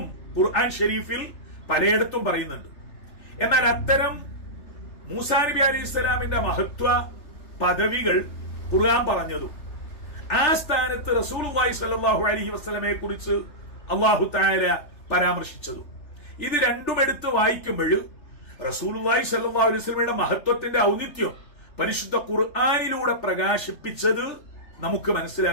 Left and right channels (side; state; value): right; late; 3.3 ms